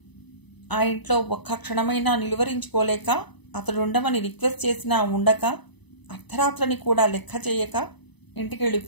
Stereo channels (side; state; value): right; late; 0.99 ms